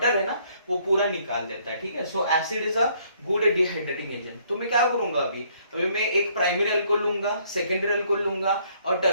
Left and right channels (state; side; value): inverted; both; correlation -0.65